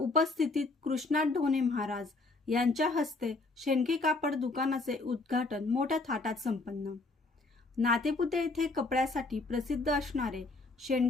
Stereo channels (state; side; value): quieter; right; 3.4 dB